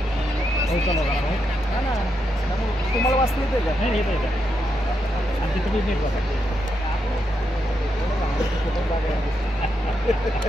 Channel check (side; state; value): both; normal; correlation 0.82